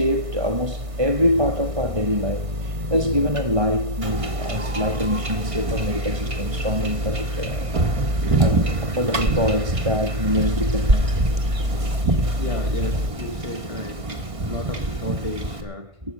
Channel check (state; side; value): late; left; 1.6 ms